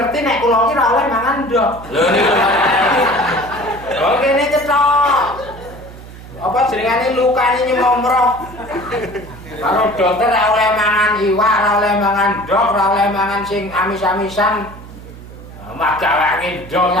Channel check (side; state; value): right; noise; hum, 16 dB below the sound